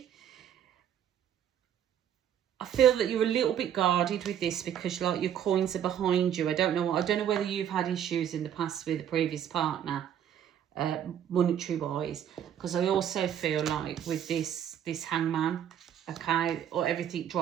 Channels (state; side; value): quieter; left; 9.6 dB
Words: I feel that you're a little bit guarded with this because like your coins are behind you. I don't know whether you've had issues in the past with a previous partner, monetary wise, because I also feel like with this hangman, okay, or everything